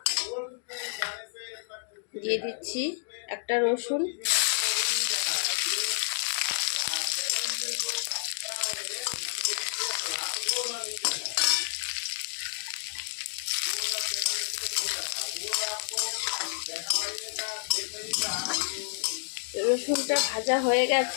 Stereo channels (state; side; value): silent; right; digital silence